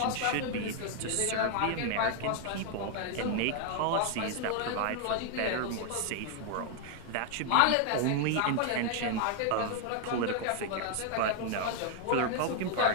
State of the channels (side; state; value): both; different; correlation 0.00